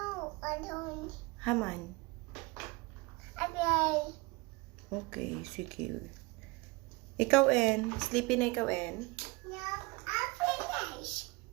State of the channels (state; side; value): quieter; left; 25.6 dB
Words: I don't. Haman. I play. Okay, sige. Ikaw en. Sleepy na ikaw en. No, I finish.